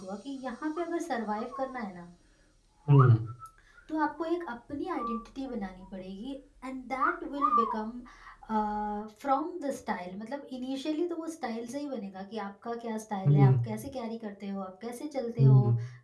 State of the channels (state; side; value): identical; both; correlation 1.00